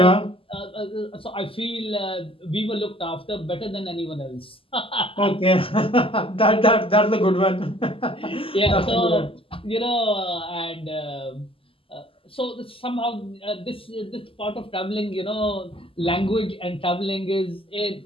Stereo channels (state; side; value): late; right; 0.26 ms